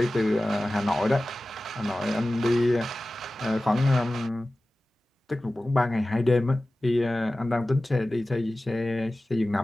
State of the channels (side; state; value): both; normal; correlation 0.96